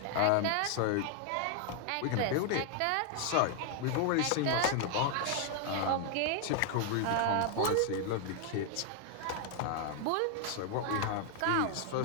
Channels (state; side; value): different; both; correlation 0.00